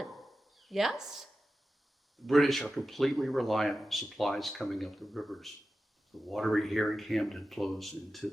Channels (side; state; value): both; normal; correlation 0.93